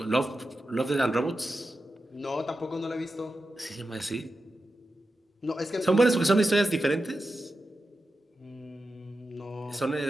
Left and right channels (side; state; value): both; normal; correlation 0.91